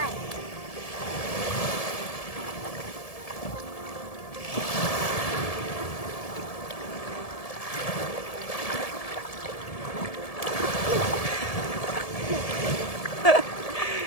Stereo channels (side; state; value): right; late; 1.7 ms